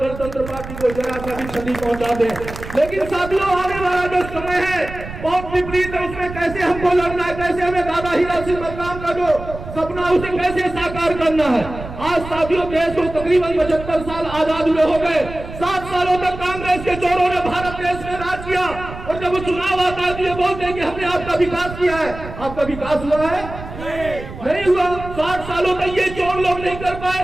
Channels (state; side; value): noise; right; rumble, 11 dB below the sound